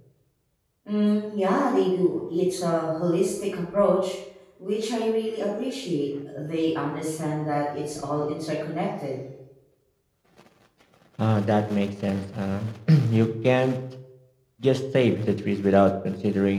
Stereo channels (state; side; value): identical; both; correlation 1.00